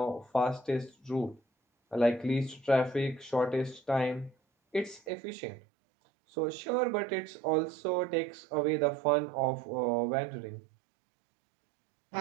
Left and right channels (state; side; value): drops out; left; at 5.1 s